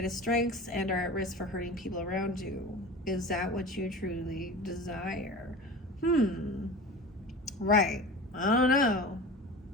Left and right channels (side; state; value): both; normal; correlation 0.34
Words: strengths and are at risk for hurting people around you. Is that what you truly desire? Right. I don't know.